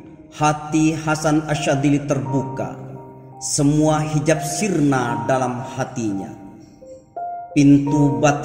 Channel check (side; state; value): both; identical; correlation 1.00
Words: hati Hasan Asyadili terbuka. Semua hijab sirna dalam hatinya. Pintu